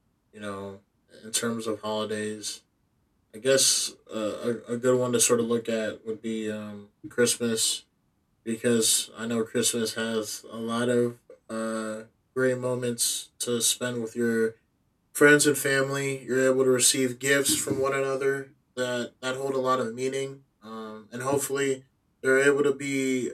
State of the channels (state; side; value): identical; both; correlation 1.00